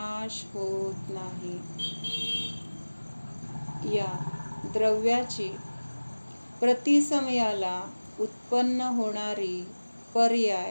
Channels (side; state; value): both; inverted; correlation -1.00